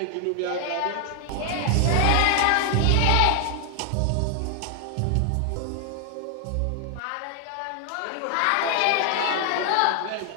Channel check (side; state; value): both; different; correlation 0.00